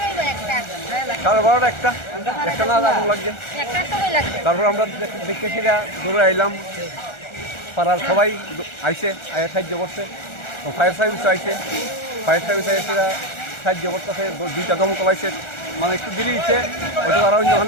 12:30 একটা না আগুন লাগছে। তারপর আমরা দেখতে সেটা দৌড়ে আইলাম, পাড়ার সবাই আইসে সাহায্য করছে, ফায়ার সার্ভিস আইসে, ফায়ার সার্ভিস আইসে সাহায্য করতেছে, 2টা দমকল আইসে, মানে একটু দেরি হয়েছে, হয়তো আরও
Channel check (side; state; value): right; late; 1.4 ms